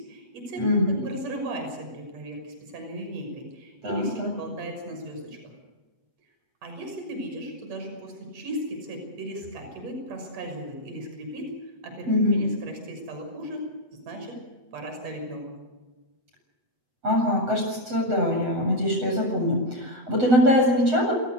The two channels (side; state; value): left; late; 8.1 ms